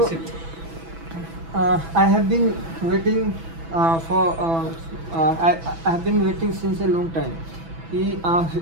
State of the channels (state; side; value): late; left; 6.1 ms